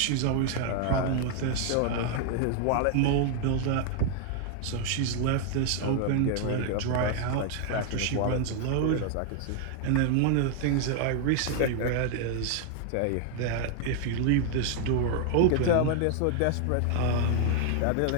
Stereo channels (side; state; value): both; different; correlation 0.00